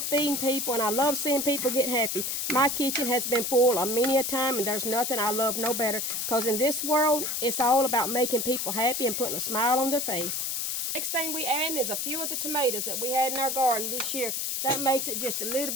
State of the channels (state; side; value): noise; left; hiss, 1 dB below the sound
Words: feeding people and I love seeing people get happy. My kitchen has been full a many a time and there's nothing I love no better because in this world, it's all about making people happy and putting a smile on their face. Next thing we add is a few of the tomatoes that we had in our garden this year. That makes it just a little